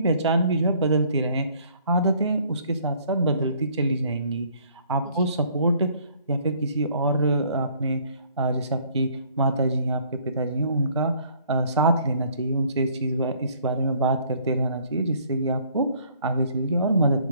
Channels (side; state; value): both; inverted; correlation -0.61